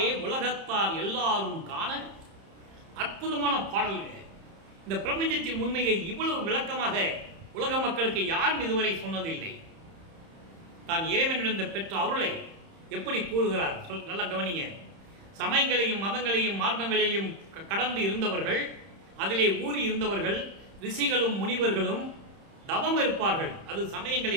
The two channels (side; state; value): left; late; 30 ms